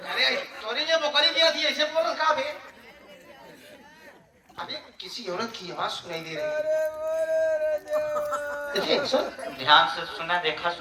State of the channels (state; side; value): identical; both; correlation 1.00